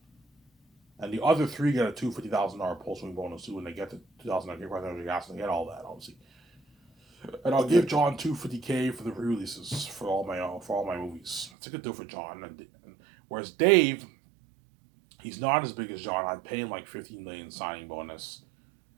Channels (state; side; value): drops out; left; at 11.5 s